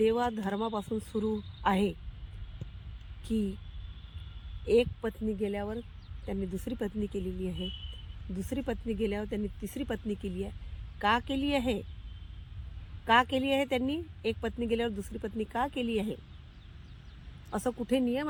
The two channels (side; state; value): both; identical; correlation 1.00